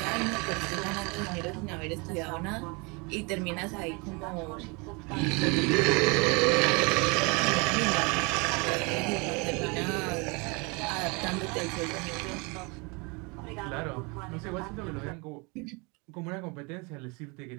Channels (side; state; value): left; quieter; 29.6 dB